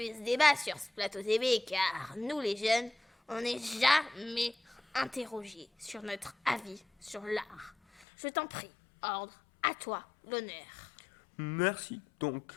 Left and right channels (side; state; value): right; drops out; at 8.1 s